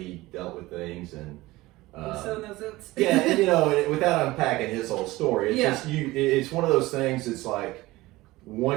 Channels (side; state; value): left; quieter; 19.2 dB